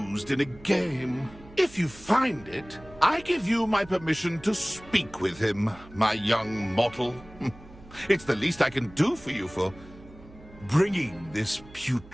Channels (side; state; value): right; noise; hum, 21 dB below the sound